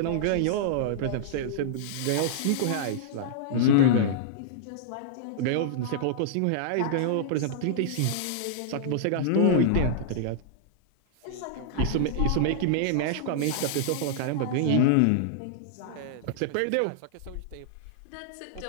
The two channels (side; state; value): both; different; correlation -0.02